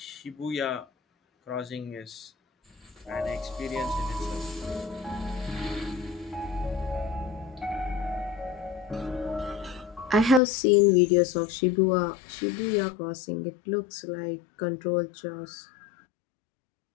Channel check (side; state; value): right; drops out; at 10.4 s